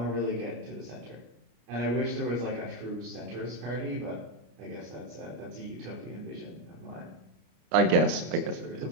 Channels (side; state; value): left; late; 33 ms